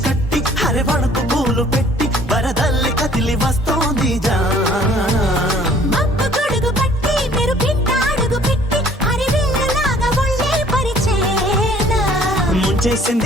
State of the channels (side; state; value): both; normal; correlation 0.55